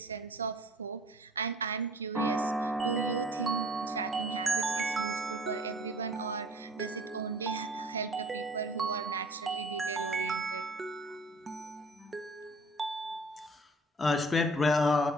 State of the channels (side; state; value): both; normal; correlation 0.50